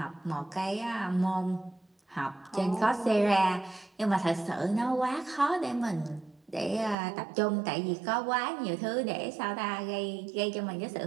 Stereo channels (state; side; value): drops out; left; at 7.0 s